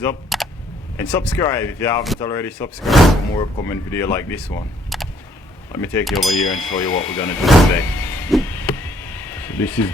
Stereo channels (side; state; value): both; normal; correlation 0.65